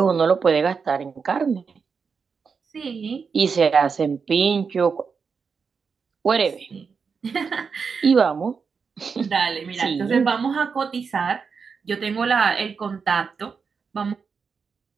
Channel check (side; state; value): left; quieter; 5.6 dB